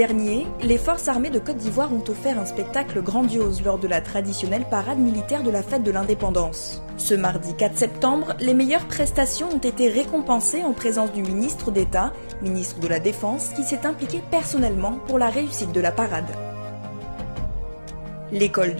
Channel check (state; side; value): inverted; both; correlation -1.00